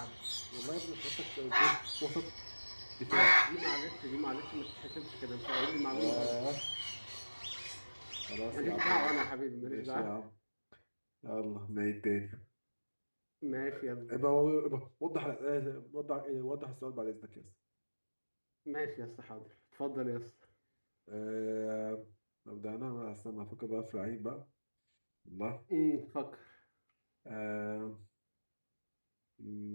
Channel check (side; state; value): both; inverted; correlation -1.00